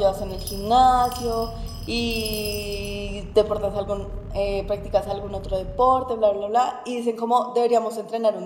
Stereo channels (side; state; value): both; identical; correlation 1.00